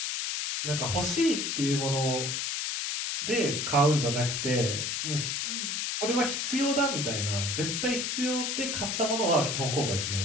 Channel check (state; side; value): noise; left; hiss, 1 dB below the sound